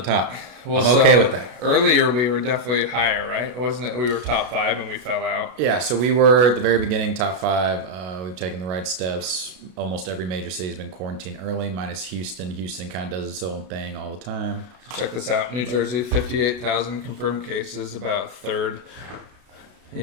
the top. Well, I'm okay with that. Earlier, we were definitely higher, right? Wasn't it? We were top 5 and we fell out. Yeah, so we were at the very beginning, top 5. We've taken the right steps. Almost every major city has been quarantined early, minus Houston. Houston kind of does its own thing all the time. So check this out. New Jersey, 58,000 confirmed cases, about a third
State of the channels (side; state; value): left; late; 33 ms